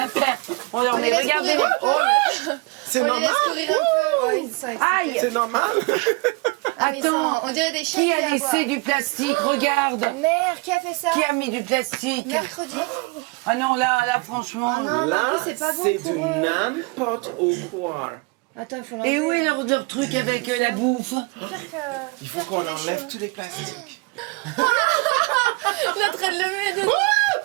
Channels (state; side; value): quieter; left; 27.3 dB